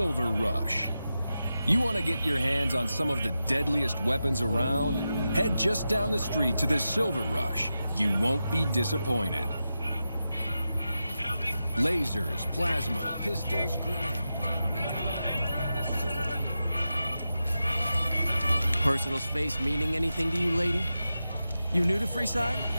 Rush. You want to get your hands on some of the deadliest weapons around? Head just down the street to the Silver Rush. You won't be disappointed. Lasers, plasma, pistols, grenades. Personal space meaning anything to you, lady? You new to Freeside?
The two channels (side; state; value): both; inverted; correlation -0.90